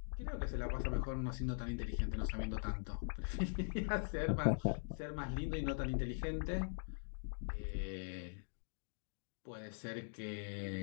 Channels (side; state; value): right; silent; digital silence